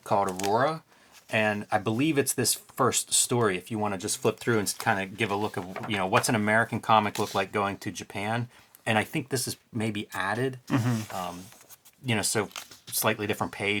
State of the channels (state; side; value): identical; both; correlation 1.00